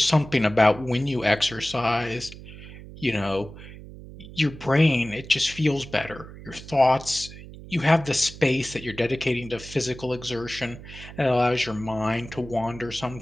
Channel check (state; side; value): noise; right; hum, 15 dB below the sound